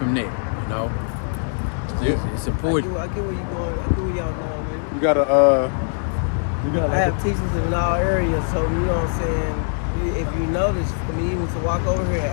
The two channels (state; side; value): silent; right; 62 dB below the other